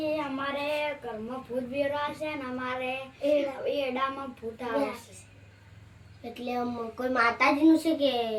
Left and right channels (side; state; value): both; identical; correlation 1.00